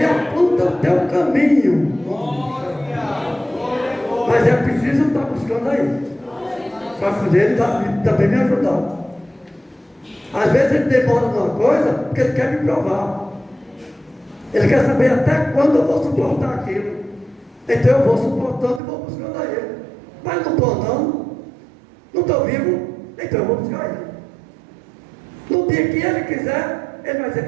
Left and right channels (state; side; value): drops out; left; at 18.8 s